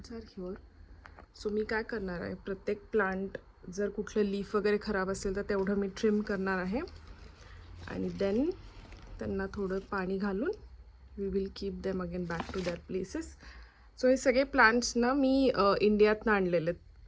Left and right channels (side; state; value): both; identical; correlation 1.00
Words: are here. So मी काय करणार आहे, प्रत्येक प्लांट जर कुठलं लीफ वगैरे खराब असेल तर तेवढं मी ट्रिम करणार आहे आणि देन त्यांना थोडं पाणी घालून we will keep them again back to that places. So हे सगळे प्लांट्स ना मी इंडियातनं आणलेले आहेत.